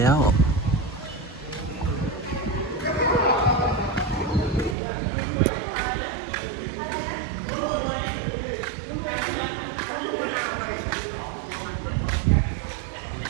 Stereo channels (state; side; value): drops out; left; at 4.8 s